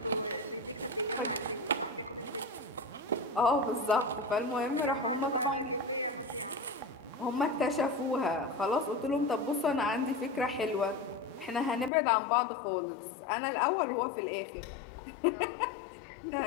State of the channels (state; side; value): drops out; right; at 11.9 s